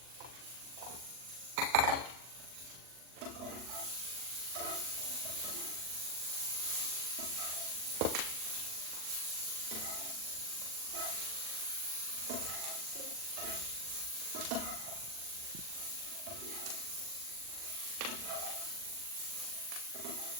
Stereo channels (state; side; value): late; left; 40 ms